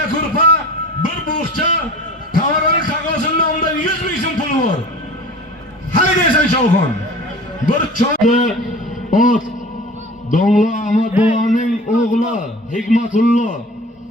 kurpa, bir bo'xcha, tavarani qog'ozining nomidan 100 ming so'm puli bor. Haydaysan Cho'g'on. Bir cho'g'da ot Domla Ahmad boboning o'g'li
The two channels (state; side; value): normal; both; correlation 0.40